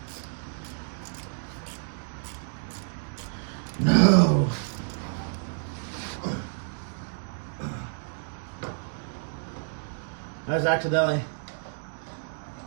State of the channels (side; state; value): left; silent; digital silence